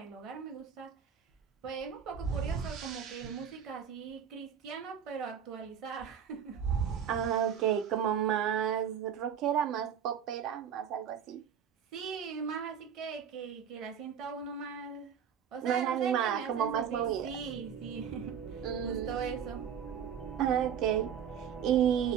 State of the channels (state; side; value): quieter; left; 8.2 dB